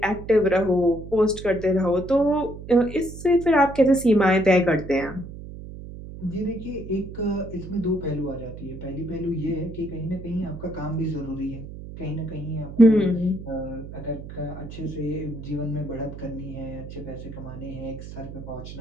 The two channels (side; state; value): right; noise; hum, 12 dB below the sound